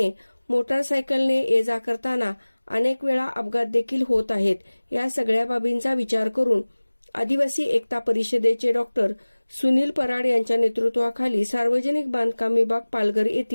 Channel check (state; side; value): inverted; both; correlation -1.00